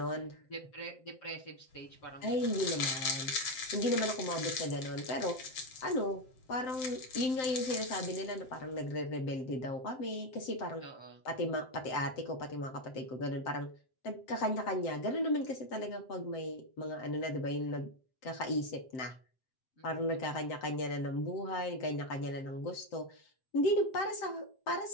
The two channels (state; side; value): late; right; 7.7 ms